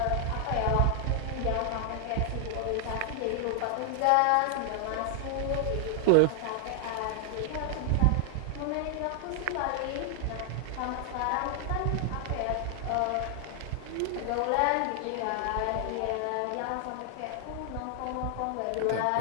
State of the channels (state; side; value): different; both; correlation 0.00